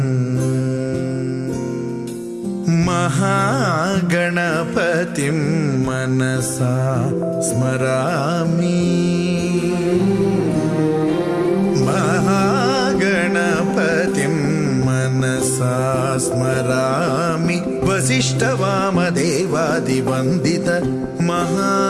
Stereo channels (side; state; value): both; identical; correlation 1.00